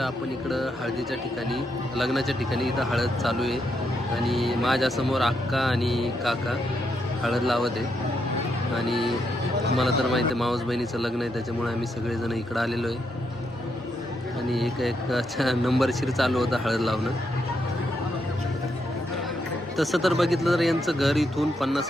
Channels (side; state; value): both; normal; correlation 0.79